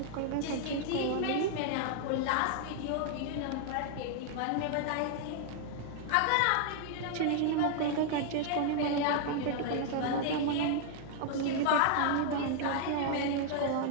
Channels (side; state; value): both; different; correlation 0.00